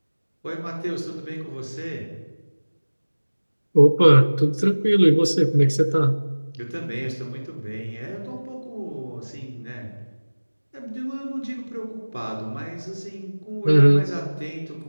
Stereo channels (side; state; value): both; inverted; correlation -1.00